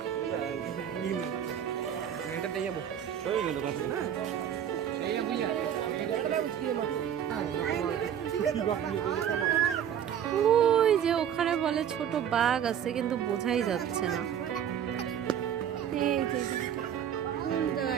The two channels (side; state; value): left; quieter; 9.2 dB